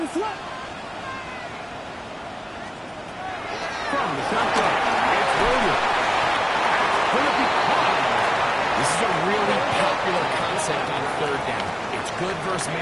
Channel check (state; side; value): identical; both; correlation 1.00